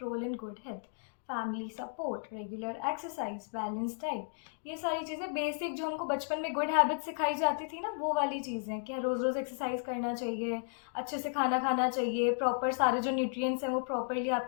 role in good health. Family support, regular exercise, balance diet, ये सारी चीज़ें basic जो हमको बचपन में good habit सिखाई जाती थी ना, वो वाली चीज़ें कि रोज़ रोज़ एक्सरसाइज करना चाहिए, अच्छे से खाना खाना चाहिए, प्रॉपर सारे जो न्यूट्रिएंट्स हैं वो प्रॉपरली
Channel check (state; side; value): silent; right; digital silence